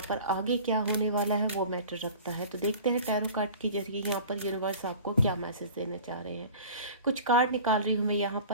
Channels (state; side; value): inverted; both; correlation -0.41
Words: पर आगे क्या होने वाला है वो मैटर रखता है। तो देखते हैं टैरो कार्ड के जरिए यहाँ पर यूनिवर्स आपको क्या मैसेज देना चाह रहे हैं। कुछ कार्ड निकाल रही हूँ मैं यहाँ